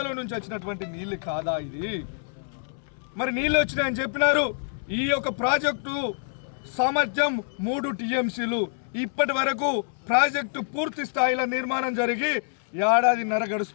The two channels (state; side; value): silent; right; 61 dB below the other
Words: నుంచి వచ్చినటువంటి నీళ్ళు కాదా ఇది? మరి నీళ్ళు వచ్చినాయని చెప్పినారు. ఈ యొక్క ప్రాజెక్టు సామర్థ్యం 3 టీఎంసీలు. ఇప్పటి వరకు ప్రాజెక్టు పూర్తి స్థాయిలో నిర్మాణం జరిగి 1.5 ఏడాది